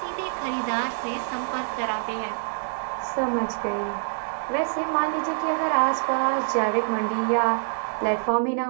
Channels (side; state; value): left; silent; digital silence